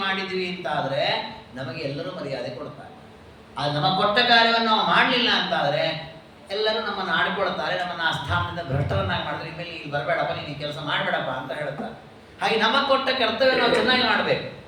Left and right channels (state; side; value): identical; both; correlation 1.00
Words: ಮಾಡಿದ್ವಿ ಅಂತಾದರೆ ನಮಗೆ ಎಲ್ಲರೂ ಮರ್ಯಾದೆ ಕೊಡ್ತಾರೆ. ಅದು ನಮಗೆ ಕೊಟ್ಟ ಕಾರ್ಯವನ್ನು ನಾವು ಮಾಡಲಿಲ್ಲ ಅಂತಾದರೆ ಎಲ್ಲರೂ ನಮ್ಮನ್ನು ಆಡ್ಕೊಳ್ತಾರೆ, ನಮ್ಮನ್ನು ಆ ಸ್ಥಾನದಿಂದ ಭ್ರಷ್ಟರನ್ನಾಗಿ ಮಾಡಿದ್ರೆ ಇನ್ಮೇಲೆ ಇಲ್ಲಿ ಬರಬೇಡಪ್ಪ, ನೀನು ಈ ಕೆಲಸ ಮಾಡಬೇಡಪ್ಪ ಅಂತ ಹೇಳ್ತಾರೆ. ಹಾಗೆ ನಮಗೆ ಕೊಟ್ಟ ಕರ್ತವ್ಯ ನಾವು ಚೆನ್ನಾಗಿ ಮಾಡಬೇಕು.